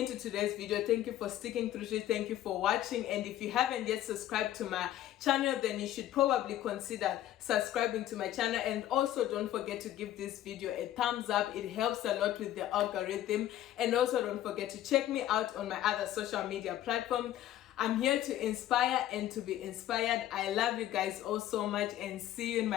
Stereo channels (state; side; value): quieter; right; 12.8 dB